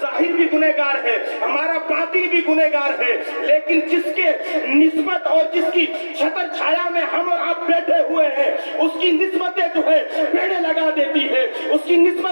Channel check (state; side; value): inverted; both; correlation -1.00